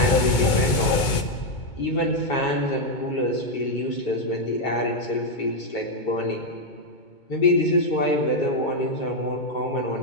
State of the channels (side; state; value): right; late; 2.2 ms